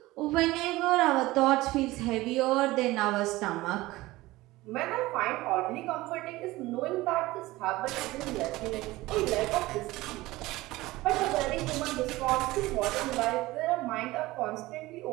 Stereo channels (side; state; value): left; quieter; 18.9 dB